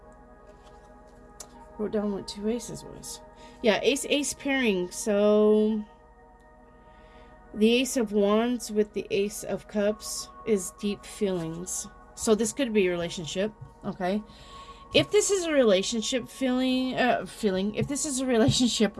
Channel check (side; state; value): both; identical; correlation 1.00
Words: Wrote down what 2 aces was. Yeah, ace pairing. So the Ace of Wands with the Ace of Cups is deep feelings. So this could be a relationship, okay? If this is a relationship if this is a relationship